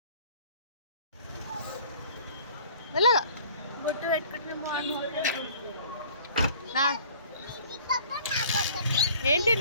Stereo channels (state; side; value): inverted; both; correlation -0.51